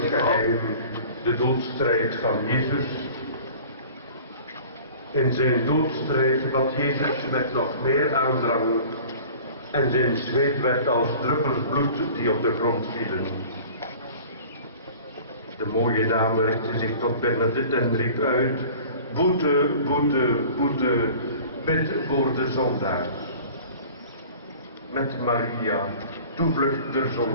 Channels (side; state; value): both; inverted; correlation -0.44